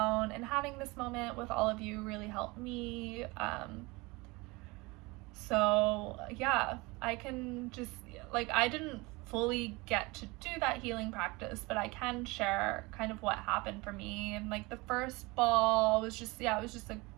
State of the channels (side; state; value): left; quieter; 24.3 dB